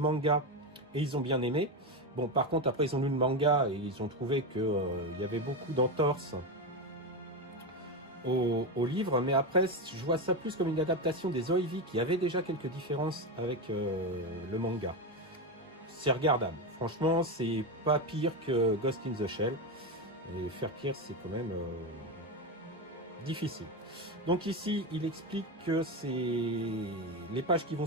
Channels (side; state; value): both; normal; correlation 0.14